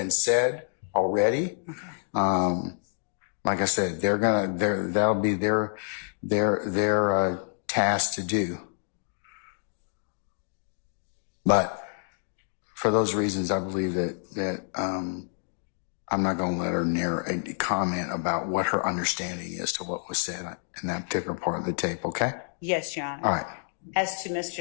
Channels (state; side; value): silent; right; digital silence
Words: said already. Okay. Like I said, that'll be their task to do. But for those reasons, I believe that I'm not going to let her comment about what her understanding is to what was said in that particular part of the tape. Okay? Yes, Your Honor. All right. As to